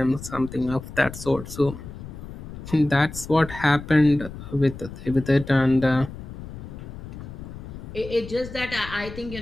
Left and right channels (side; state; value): left; noise; rumble, 12 dB below the sound